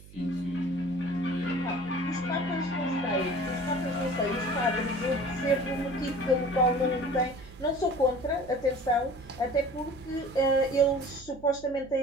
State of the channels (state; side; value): noise; right; hum, 20 dB below the sound